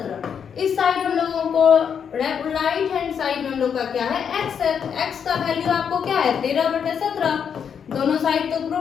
इस साइड हम लोगों को राइट हैंड साइड में हम लोग का क्या है x है, तो x का वैल्यू आपको क्या है 13/17। दोनों साइड तो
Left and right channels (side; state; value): right; quieter; 7.4 dB